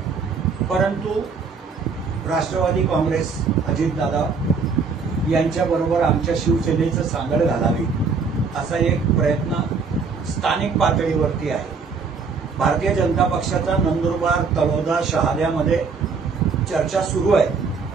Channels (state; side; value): quieter; left; 5.0 dB